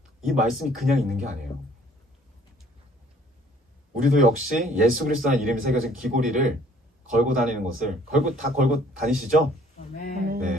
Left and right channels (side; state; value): both; normal; correlation 0.57